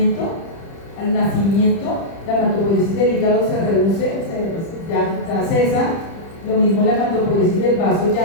nacimiento la hematopoiesis del hígado se reduce, ya cesa. Lo mismo la hematopoiesis del vaso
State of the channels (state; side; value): late; right; 30 ms